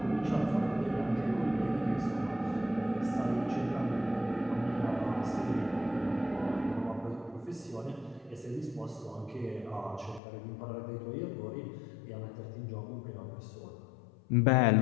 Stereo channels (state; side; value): drops out; right; at 10.2 s